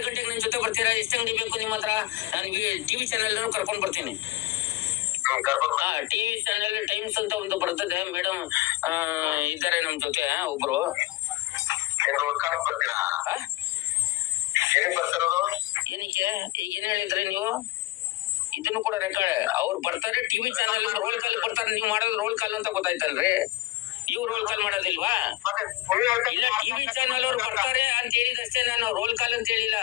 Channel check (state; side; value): quieter; right; 17.7 dB